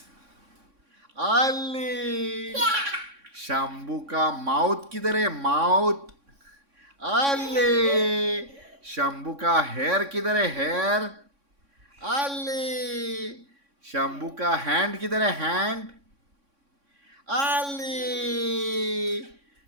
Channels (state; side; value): late; left; 3.6 ms